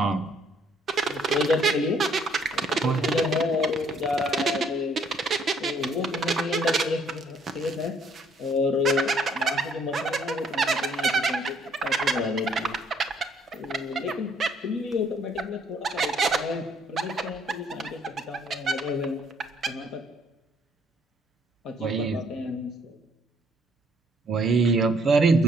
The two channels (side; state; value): both; normal; correlation 0.64